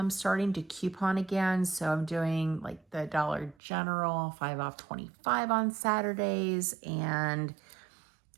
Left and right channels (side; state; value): left; drops out; at 3.6 s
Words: starting to coupon again. So I'm doing like the Dollar General 5 off 25 on Saturdays. And